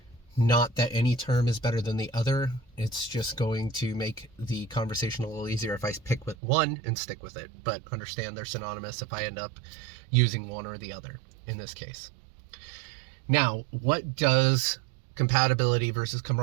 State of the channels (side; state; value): left; drops out; at 6.4 s